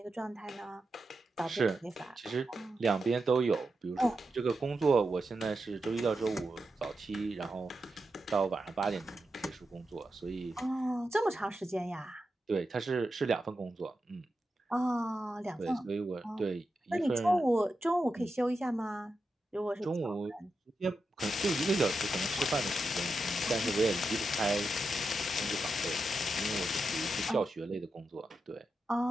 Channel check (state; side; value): normal; both; correlation 0.88